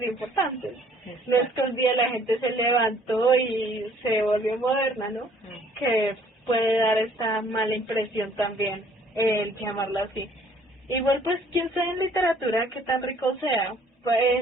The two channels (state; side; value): normal; both; correlation 0.59